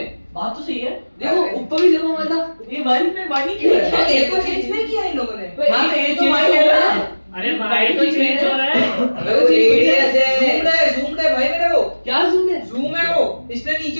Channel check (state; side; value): inverted; both; correlation -1.00